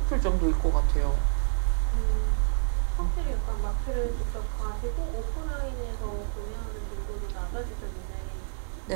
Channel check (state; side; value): silent; left; digital silence